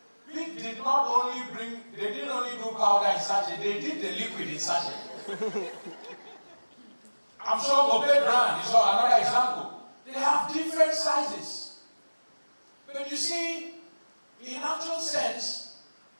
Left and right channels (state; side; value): inverted; both; correlation -1.00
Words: They didn't only do powder in sachet, they did the liquid in sachet. I'm sure Obey brand is another example. They have different sizes. But you see, in actual sense,